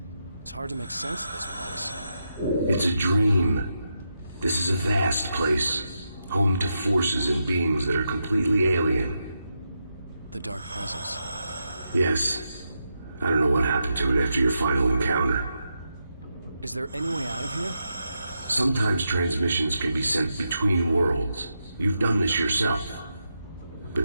It's hard to make sense of this place. It's a dream. This is a vast place, home to forces and beings that are completely alien. The Dark Presence. Yes. I don't know what happened to it after your final encounter. Is there any way out of here? Sometimes transmissions can be sent between worlds. You've done this yourself. But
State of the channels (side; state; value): both; inverted; correlation -0.85